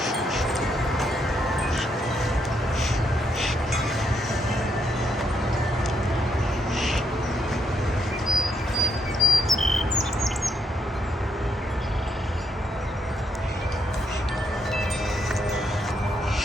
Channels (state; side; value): normal; both; correlation 0.76